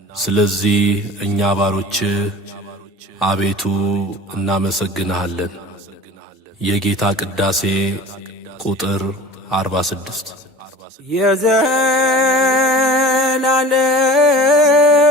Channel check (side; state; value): both; normal; correlation 0.40